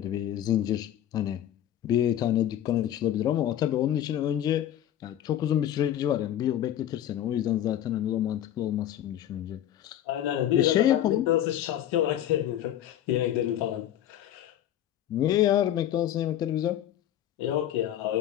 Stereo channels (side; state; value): right; quieter; 11.4 dB